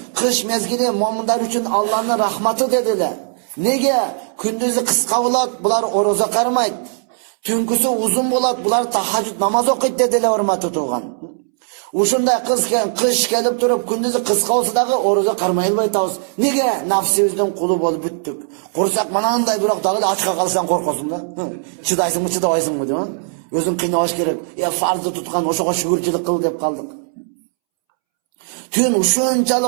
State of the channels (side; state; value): left; silent; 67 dB below the other